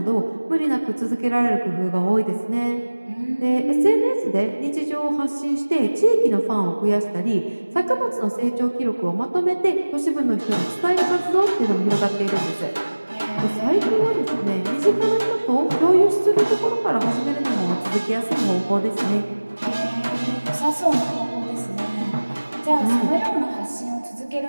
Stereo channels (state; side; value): inverted; both; correlation -1.00